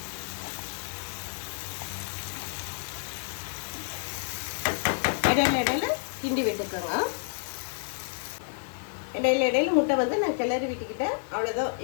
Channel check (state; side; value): silent; right; 58 dB below the other